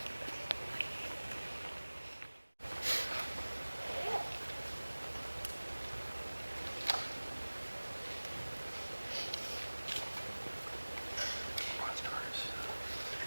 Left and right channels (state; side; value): inverted; both; correlation -1.00